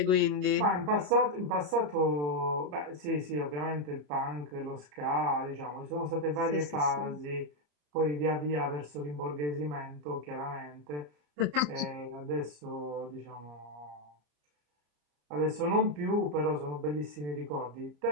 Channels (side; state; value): left; late; 34 ms